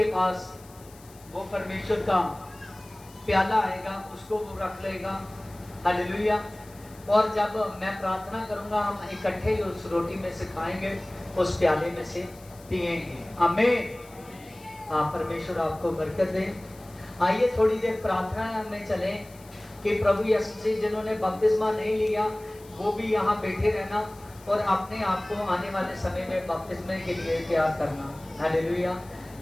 पास वो परमेश्वर का प्याला आएगा उसको वो रख लेगा। हालेलुया। और जब मैं प्रार्थना करूंगा हम इकट्ठे उस रोटी में से खाएंगे, उस प्याले में से पिएंगे। आमीन। हाँ, परमेश्वर आपको बरकत दे। आइए थोड़ी देर प्रार्थना में चलें कि प्रभु यीशु मसीह जिन्होंने बपतिस्मा नहीं लिया वो भी यहाँ बैठे रहना और अपने आप को आने वाले समय में बपतिस्मे के लिए तैयार करना। हालेलुया।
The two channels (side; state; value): left; noise; hiss, 24 dB below the sound